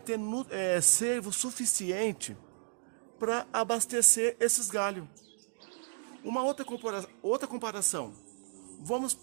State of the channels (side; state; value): left; silent; digital silence